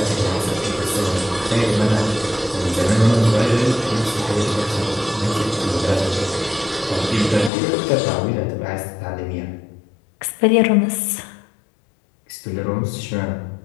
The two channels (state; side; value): drops out; right; at 7.5 s